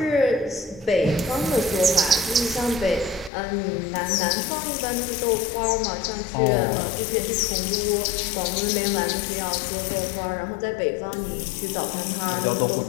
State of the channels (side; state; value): right; drops out; at 3.3 s